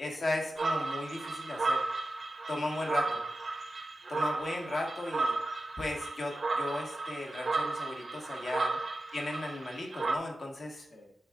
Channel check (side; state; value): both; normal; correlation 0.92